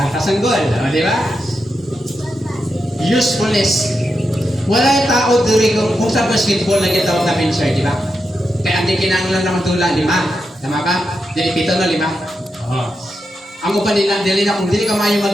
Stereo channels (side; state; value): both; normal; correlation 0.87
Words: ang goal. Di ba? Usefulness. Wala'y tao dito kung sa basketball na gitawag na pincher, di ba? Kaya hindi kinanglan naman tula, 5. Tama ba? Dili 7 no, 5. Oo. Ang upan nila, dili na kung dili ka mayo